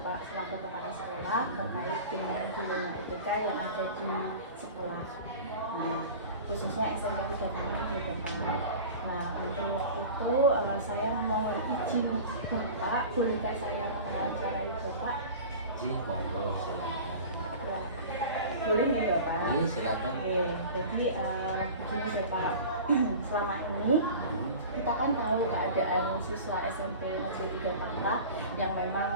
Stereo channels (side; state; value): both; inverted; correlation -0.37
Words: selaku kepala sekolah terkait dengan dilema IPK yang ada di sekolah. Nah, khususnya SMP 36 ya Bapak. Nah, untuk itu saya mohon izin Bapak, bolehkah saya mewawancarai Bapak? Ji, monggo silakan. Ya, boleh ya Bapak? Iya, silakan. Oke, jadi begini Bapak, selama ini kita kan tahu keadaan siswa SMP Negeri 3 Tangerang yang